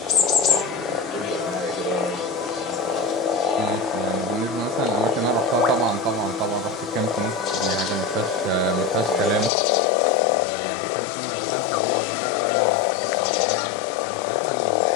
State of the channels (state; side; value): drops out; right; at 9.5 s